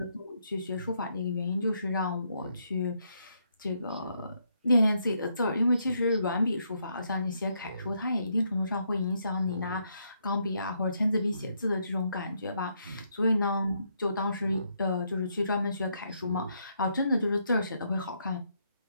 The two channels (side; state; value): both; inverted; correlation -0.76